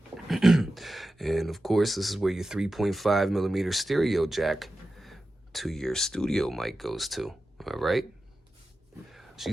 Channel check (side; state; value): both; normal; correlation 0.93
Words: And, of course, this is where your 3.5 millimeter stereo jack to your studio mic goes to, all right?